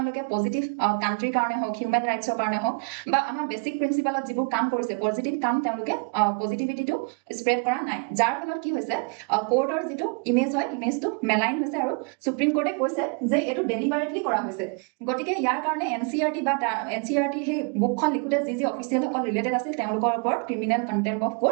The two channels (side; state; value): left; quieter; 36.9 dB